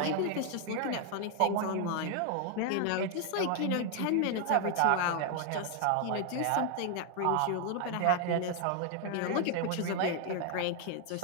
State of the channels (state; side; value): different; both; correlation 0.00